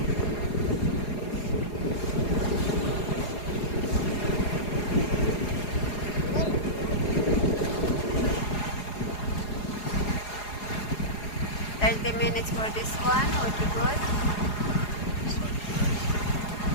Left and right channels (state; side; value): late; right; 4.8 ms